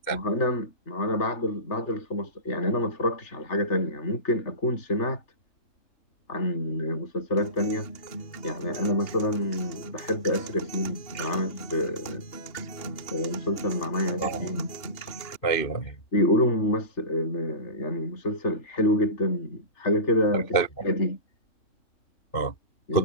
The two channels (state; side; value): late; right; 2.8 ms